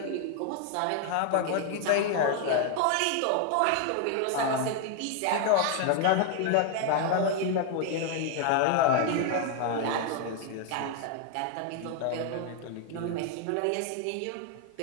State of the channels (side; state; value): both; different; correlation 0.01